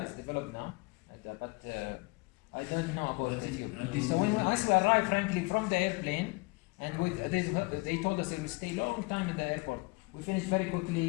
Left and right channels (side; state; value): right; quieter; 26.8 dB